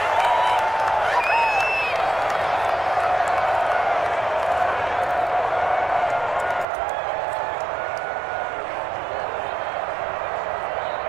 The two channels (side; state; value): left; drops out; at 6.7 s